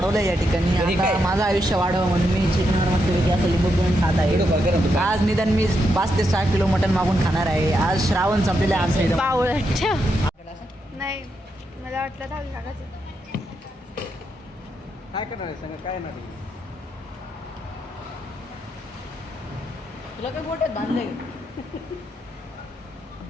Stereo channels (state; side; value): normal; both; correlation 0.82